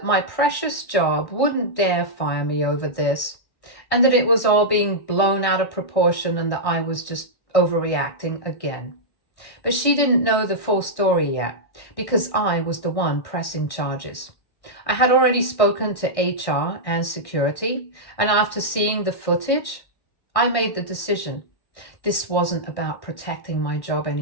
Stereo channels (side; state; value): right; late; 1.6 ms